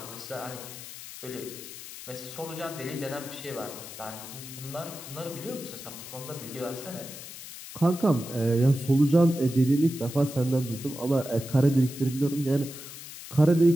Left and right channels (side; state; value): left; noise; hiss, 13 dB below the sound